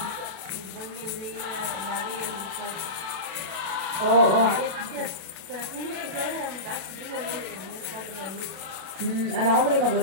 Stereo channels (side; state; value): left; late; 36 ms